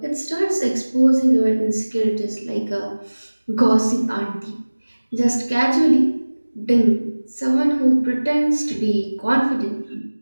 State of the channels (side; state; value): both; inverted; correlation -1.00